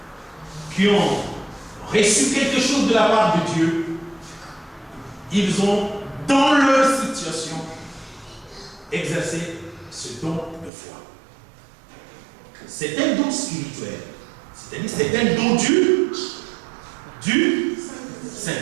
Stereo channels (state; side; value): drops out; left; at 10.7 s